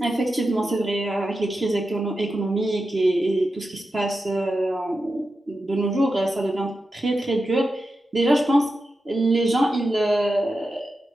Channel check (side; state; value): both; normal; correlation 0.90